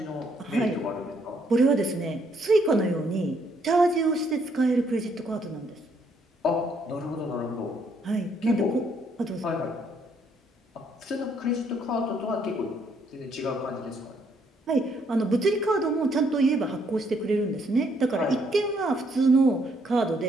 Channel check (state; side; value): normal; both; correlation 0.70